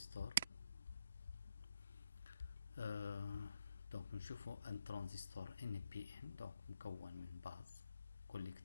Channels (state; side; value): inverted; both; correlation -0.75